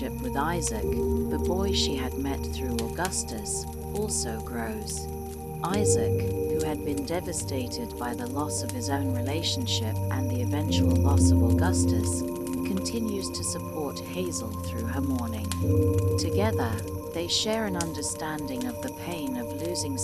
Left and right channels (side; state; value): both; identical; correlation 1.00